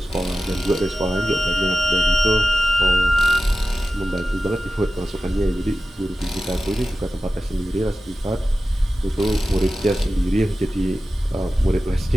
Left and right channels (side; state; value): both; normal; correlation 0.95